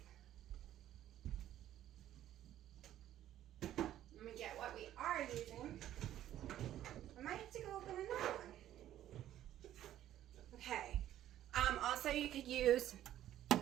Let me get what we are using. I might have to go open another one. Okay. Also, you could use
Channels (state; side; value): quieter; left; 12.3 dB